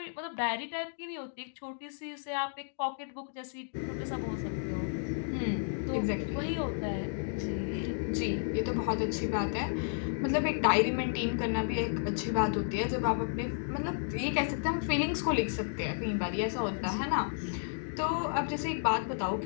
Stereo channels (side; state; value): right; silent; digital silence